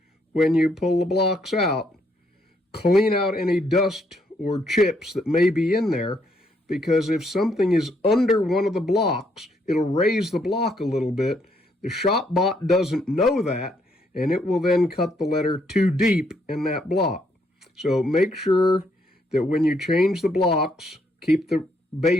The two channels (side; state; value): both; normal; correlation 0.72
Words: when you pull the blocks out, clean out any dust or chips that may be in there, because if something is under one of the blocks, it'll raise the block a little bit. The ShopBot doesn't know that, and it will then cut the letter too deep in that block. So make sure that when you change the blocks, keep the